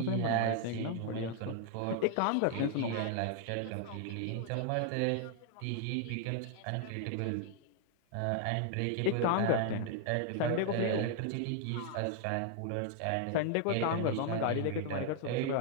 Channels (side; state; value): both; different; correlation 0.00